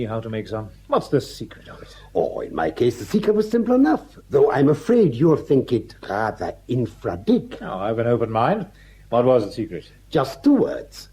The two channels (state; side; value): identical; both; correlation 1.00